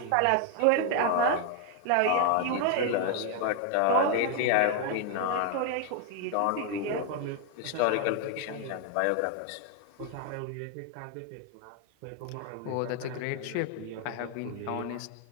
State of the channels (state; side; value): different; both; correlation 0.00